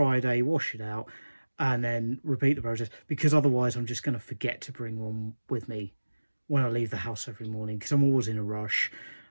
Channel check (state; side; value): inverted; both; correlation -1.00